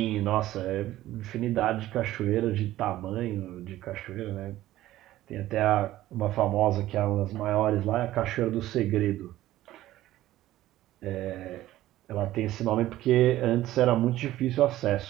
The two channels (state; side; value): quieter; left; 14.8 dB